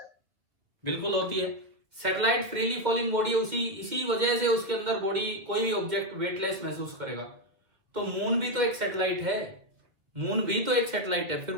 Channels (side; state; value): left; late; 2.0 ms